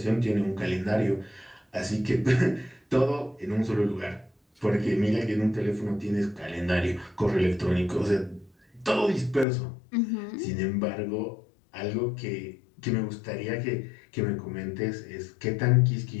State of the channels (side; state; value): right; drops out; at 9.5 s